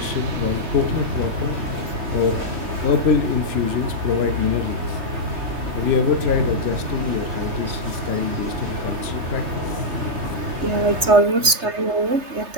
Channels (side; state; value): left; late; 3.3 ms